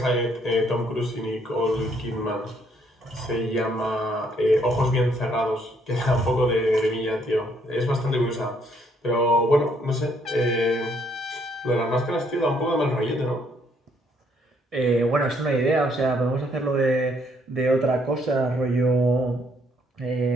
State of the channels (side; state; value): both; normal; correlation 0.69